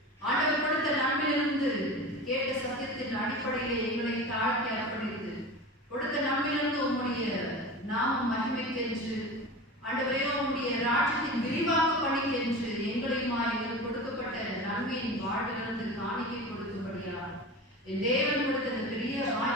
ஆண்டவர் கொடுத்த நன்மையிலிருந்து கேட்ட சத்தியத்தின் அடிப்படையிலே எங்களை தாழ்த்தி அர்ப்பணித்து கொடுத்த நன்மையிலிருந்து உம்முடைய நாமம் மகிமைக்கென்று ஆண்டவரே உம்முடைய ராஜ்யத்தின் விரிவாக்க பணிக்கென்று எங்களையுமா எங்களுக்கு கொடுக்கப்பட்ட நன்மையின் வாழ்விலிருந்து காணிக்கை கொடுக்கும்படியா என் தேவன் கொடுத்த இந்த பெரிய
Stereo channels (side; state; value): both; normal; correlation 0.31